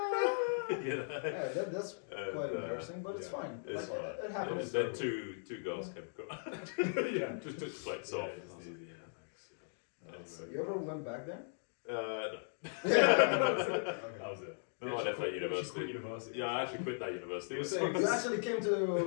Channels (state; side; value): silent; right; digital silence